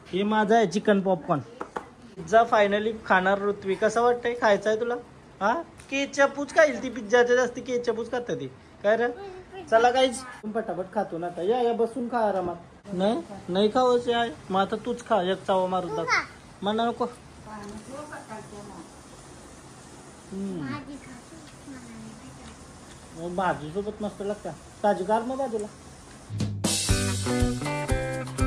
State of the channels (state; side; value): identical; both; correlation 1.00